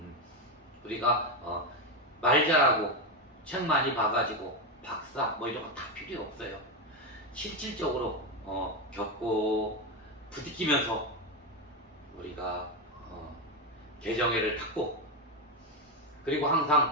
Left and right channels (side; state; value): both; normal; correlation 0.10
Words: 우리가 말 잘하고 책 많이 봐가지고 박사 뭐 이런 거 다 필요 없어요. 실질적으로 겪고 부딪히면서 우리가 개정회를 탔고, 그리고